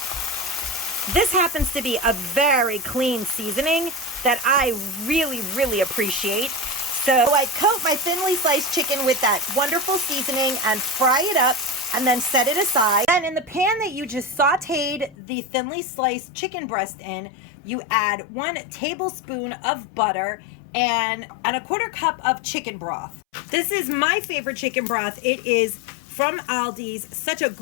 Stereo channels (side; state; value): right; drops out; at 15.2 s